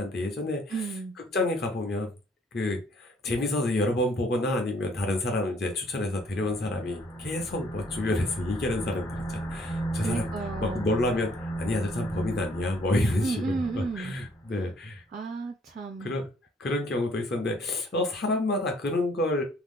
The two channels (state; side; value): normal; both; correlation 0.62